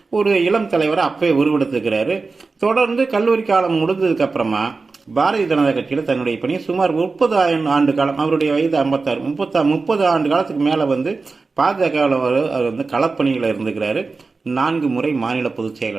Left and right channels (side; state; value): left; quieter; 4.1 dB